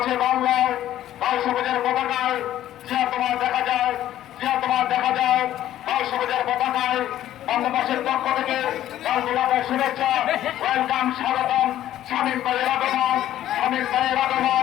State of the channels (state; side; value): quieter; right; 12.6 dB